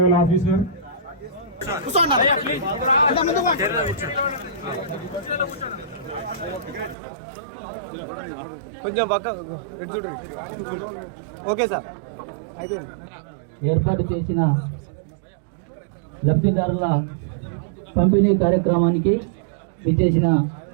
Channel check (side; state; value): left; drops out; at 7.0 s